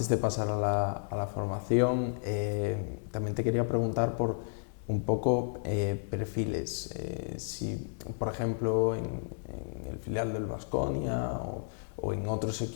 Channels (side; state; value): right; silent; 56 dB below the other